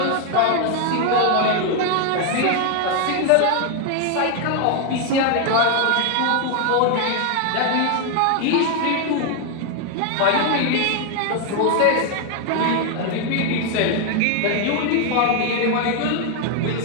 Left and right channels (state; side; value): different; both; correlation 0.01